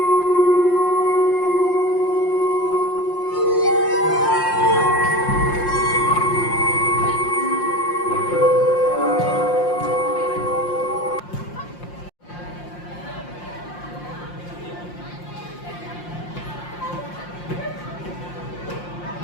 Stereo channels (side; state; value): right; late; 5.7 ms